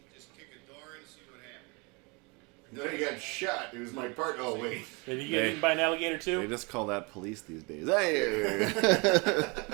Just kick a door in and see what happened. Then he got shot. It was my part. Oh, wait. Did he get eaten by an alligator too? They just call that police these days. Hey.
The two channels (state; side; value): quieter; left; 29.4 dB